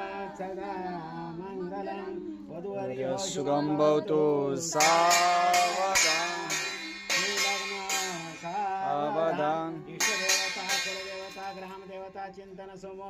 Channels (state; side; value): identical; both; correlation 1.00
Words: सदा मंगलं वधुवर्यो शुभं भवतु सावधान सावधान इष्टदेवता कुलदेवता ग्रामदेवता चिंतन